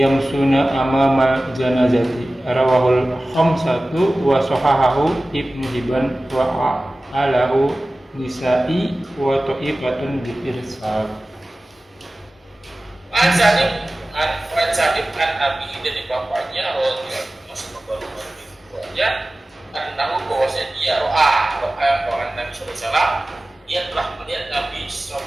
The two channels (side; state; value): both; normal; correlation 0.97